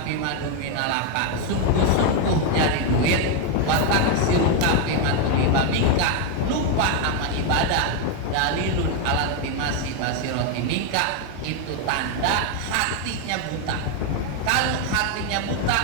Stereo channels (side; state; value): both; different; correlation 0.01